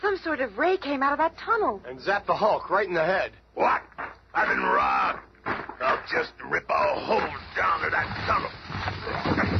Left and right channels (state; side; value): identical; both; correlation 1.00